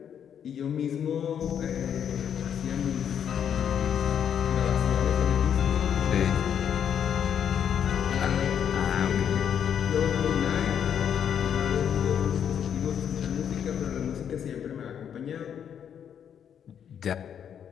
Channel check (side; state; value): right; quieter; 8.6 dB